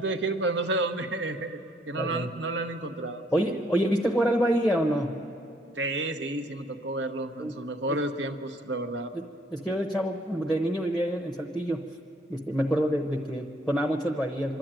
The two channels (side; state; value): both; normal; correlation 0.66